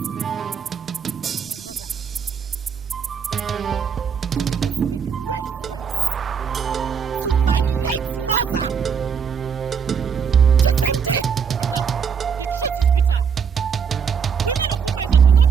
my mother? Did you just make reference to my late mother? Chisimde! Adaku, the truth is bitter. Women of Umeze do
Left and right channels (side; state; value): left; quieter; 6.8 dB